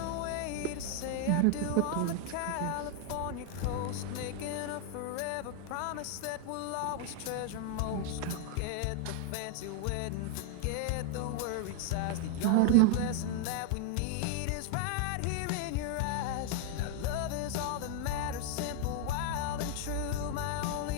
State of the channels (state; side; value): different; both; correlation 0.00